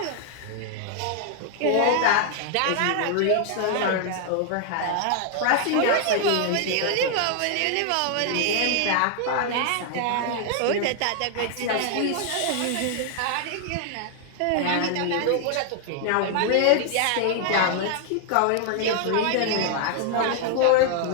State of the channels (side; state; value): both; different; correlation 0.00